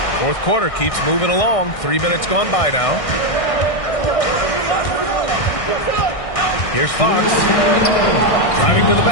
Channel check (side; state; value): right; late; 1.6 ms